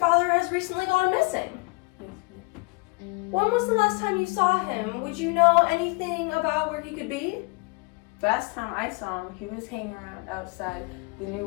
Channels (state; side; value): quieter; right; 29.1 dB